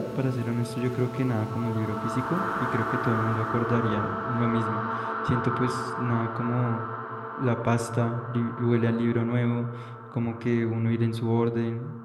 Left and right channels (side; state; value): both; identical; correlation 1.00